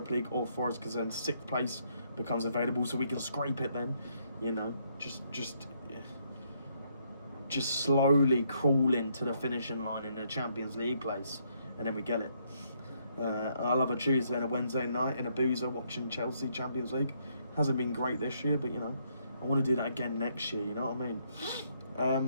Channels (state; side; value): inverted; both; correlation -0.72